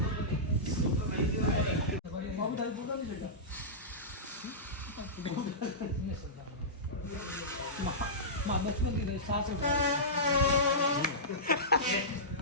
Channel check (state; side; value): normal; both; correlation -0.17